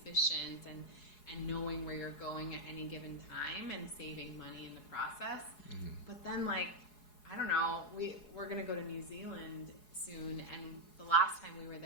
and knowing where you're going at any given time and saving money in the process. But then, like, I don't know, we're gonna go to New Zealand soon, and the last time we were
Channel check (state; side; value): late; right; 4.7 ms